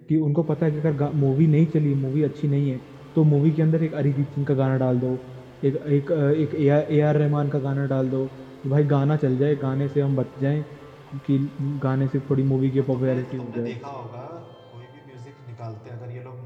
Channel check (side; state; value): both; identical; correlation 1.00